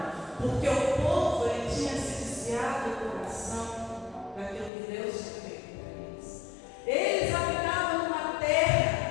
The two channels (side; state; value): right; drops out; at 4.7 s